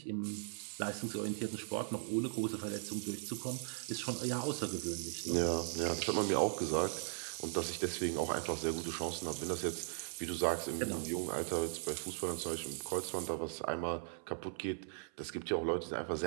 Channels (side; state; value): left; silent; 52 dB below the other